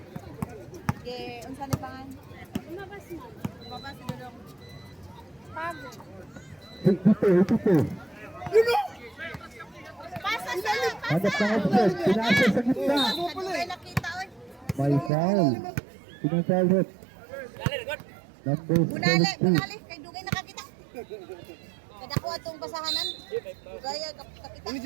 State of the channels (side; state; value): left; drops out; at 15.1 s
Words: Okay, unsa ni pangan? Umabas si Dudong. Pago. Ito. Pasa sa Hanap ng offset. Pinasa sa gitna. Kaya nakita, oy. May foul. Pinang-foul rin. Number Bunali, 17. bunali. Kay Dugay nakakita. Kada ko atong basahanan. Dugay